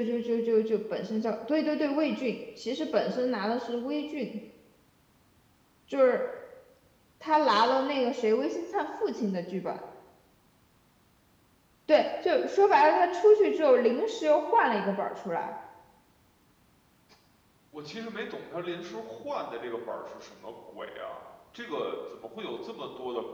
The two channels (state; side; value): identical; both; correlation 1.00